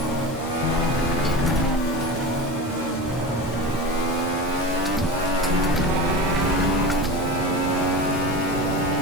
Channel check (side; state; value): both; normal; correlation 0.27